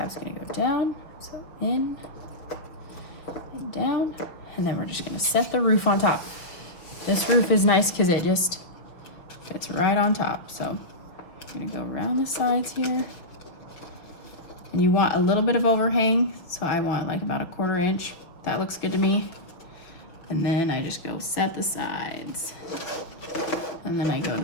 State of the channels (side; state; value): right; late; 5.8 ms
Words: gonna go down, so in and down. And then we're just gonna set the roof on top. This roof is nice because it just fits right on top. So I'm gonna go around the sides here. And you want a little bit of overhang. So I want like about 1/4 inch. That looks good to me. And then I just go set the sides. And then I go to